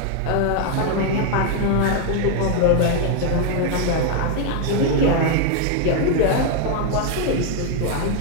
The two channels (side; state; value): both; different; correlation 0.00